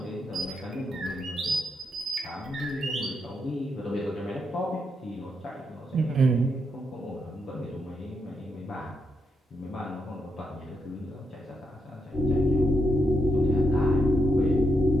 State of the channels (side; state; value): both; normal; correlation 0.81